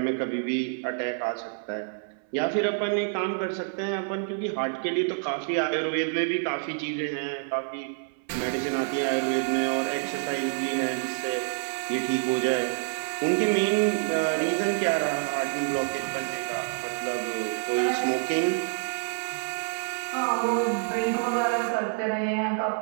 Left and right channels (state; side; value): silent; left; 60 dB below the other